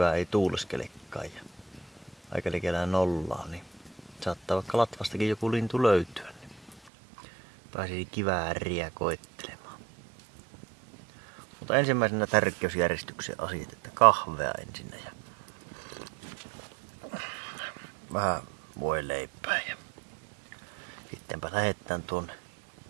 ei tuuleskelekaan ja aika likellä nollaa, niin saattaa vaikka latvastakin joku lintu löytyä. Niin pääsisi kivääriä koettelemaan. Mutta ensimmäisenä tärkeysjärjestyksen asiat, että kahvea ensin ja vähän voileipää ja sittenpä lähdetään tuonne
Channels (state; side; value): drops out; left; at 6.8 s